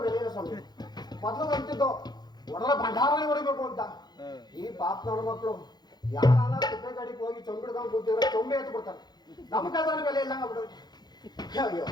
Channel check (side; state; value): right; late; 0.20 ms